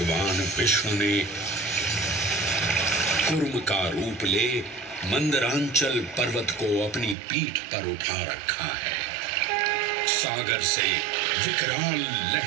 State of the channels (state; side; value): drops out; left; at 7.2 s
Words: विष्णु ने कूर्म का रूप ले मंदरांचल पर्वत को अपनी पीठ पर उठा रखा है। सागर से विकराल